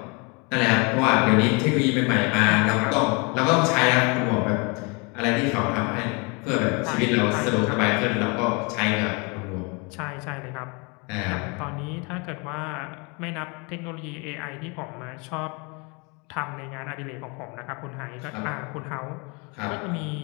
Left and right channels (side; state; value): right; quieter; 30.6 dB